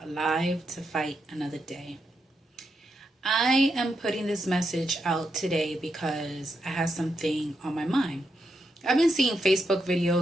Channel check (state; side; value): normal; both; correlation 0.83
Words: to fight another day. I am putting this message out today because I have something on my mind. I've been seeing Facebook